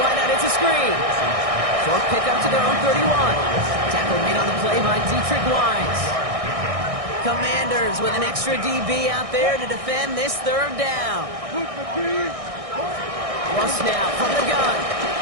it's a screen. Short pickup to their own 31. Tackle made on the play by Dietrich Wise. Commanders with an extra DB out there to defend this third down. Russ now from the gun.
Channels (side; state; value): left; late; 1.6 ms